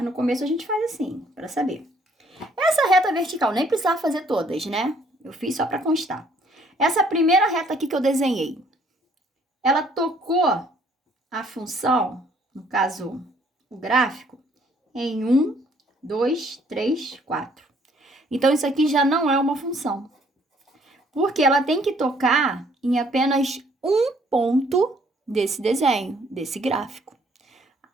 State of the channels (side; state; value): both; normal; correlation 0.63